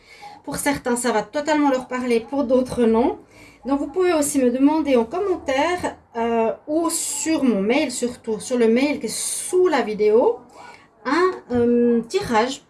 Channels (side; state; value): both; identical; correlation 1.00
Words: Pour certains, ça va totalement leur parler, pour d'autres, non. Donc, vous pouvez aussi me demander en commentaire ou sur mon mail, surtout sur le mail qui est sous la vidéo, un tirage